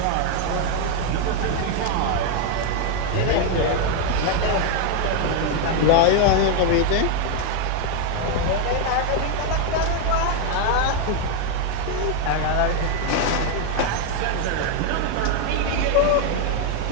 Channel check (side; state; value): both; different; correlation 0.01